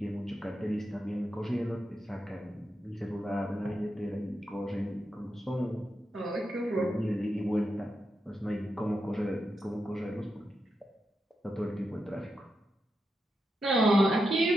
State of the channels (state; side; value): normal; both; correlation 0.86